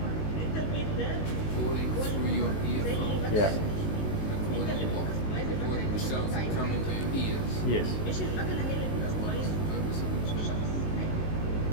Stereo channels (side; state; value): right; late; 19 ms